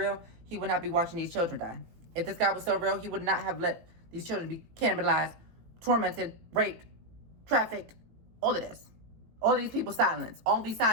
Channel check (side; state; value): left; late; 18 ms